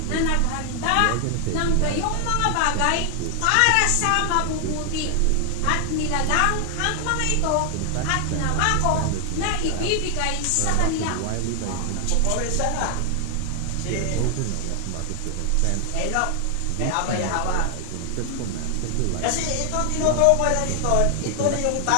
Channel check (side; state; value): both; different; correlation 0.00